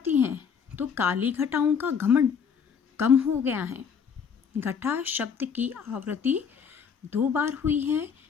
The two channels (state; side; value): quieter; right; 6.8 dB